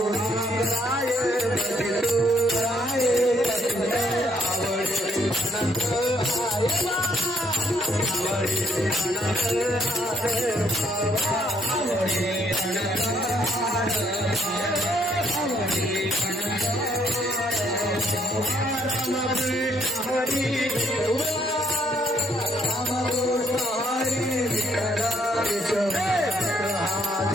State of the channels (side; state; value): both; normal; correlation 0.69